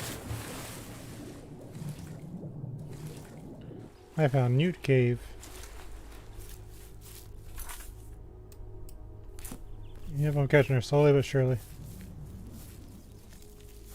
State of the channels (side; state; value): both; identical; correlation 1.00